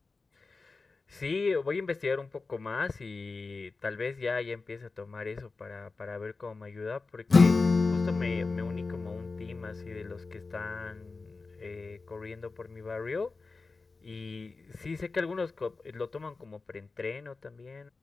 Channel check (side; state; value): right; quieter; 4.0 dB